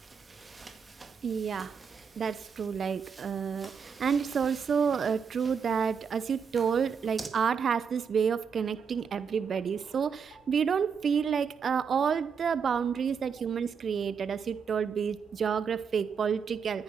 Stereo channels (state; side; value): quieter; left; 6.5 dB